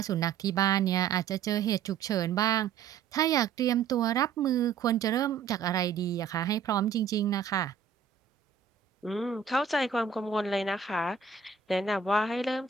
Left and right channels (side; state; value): left; quieter; 6.6 dB